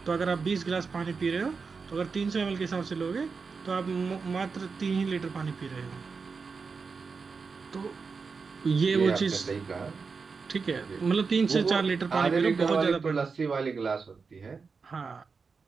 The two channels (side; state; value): left; quieter; 5.0 dB